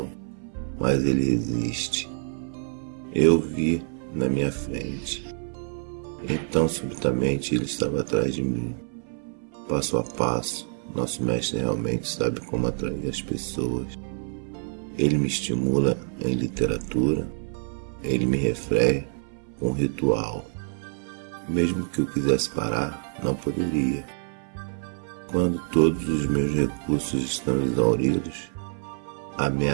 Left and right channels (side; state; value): left; silent; 58 dB below the other